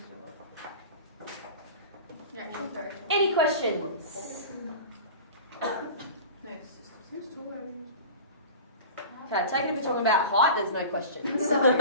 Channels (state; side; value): inverted; both; correlation -0.35